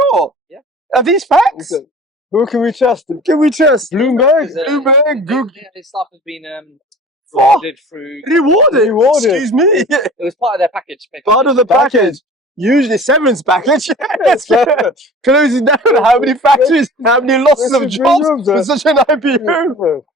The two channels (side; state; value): both; normal; correlation 0.43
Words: Yeah. Are these facts? Who can we trust? Can we trust? Bloomberg. Bloomberg, Google. His staff has been rewarded through. Rewarded. Rewarded. Excuse me. It was part of their package. basically. Part of the package. Usually severance package. Yes. Closing down how many factories, how many losses of jobs for such an IPO.